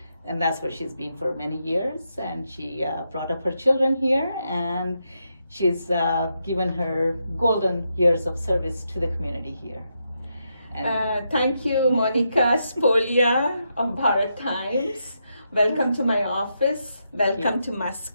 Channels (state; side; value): inverted; both; correlation -0.82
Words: and that's where she's been for many years. And she brought up her children here, and she's given her golden years of service to the community here. Thank you, Monica Spolia of Bharat Times. Welcome to my office. Welcome to